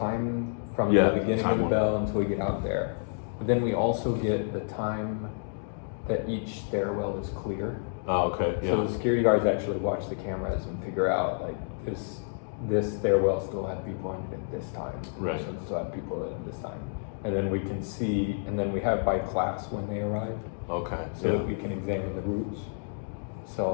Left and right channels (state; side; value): silent; right; digital silence